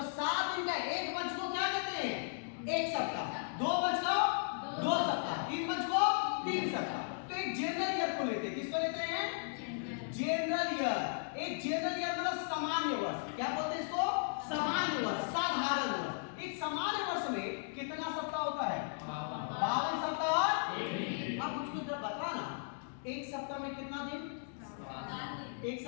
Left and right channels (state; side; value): silent; right; digital silence